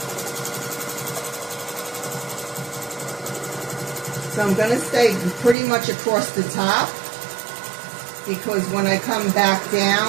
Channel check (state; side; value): drops out; left; at 5.6 s